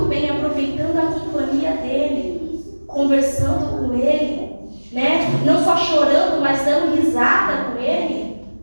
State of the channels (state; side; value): inverted; both; correlation -1.00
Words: bem aproveitando a companhia dEle, conversando com Ele, né? Não só chorando, mas dando risada com Ele,